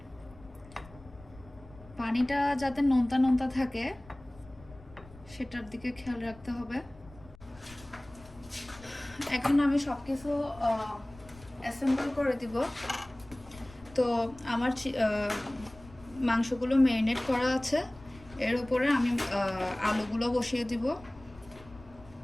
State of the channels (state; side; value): noise; left; rumble, 21 dB below the sound